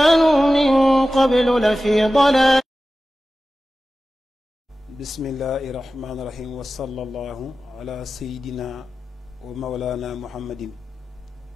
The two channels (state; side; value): normal; both; correlation 0.94